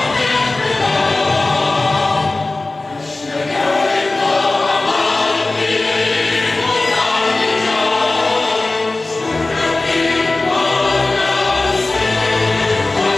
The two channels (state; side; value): quieter; right; 3.1 dB